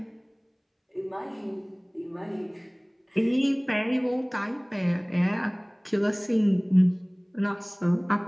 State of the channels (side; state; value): both; identical; correlation 1.00